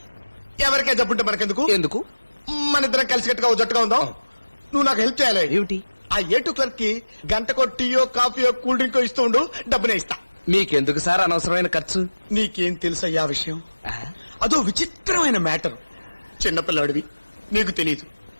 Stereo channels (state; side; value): inverted; both; correlation -1.00